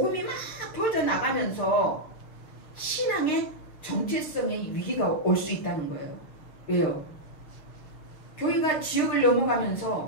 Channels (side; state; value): right; late; 6.5 ms